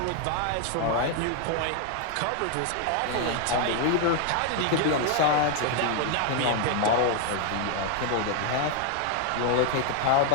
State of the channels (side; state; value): both; different; correlation 0.00